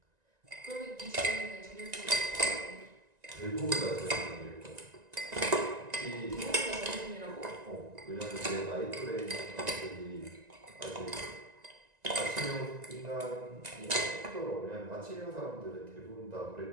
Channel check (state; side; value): late; left; 1.9 ms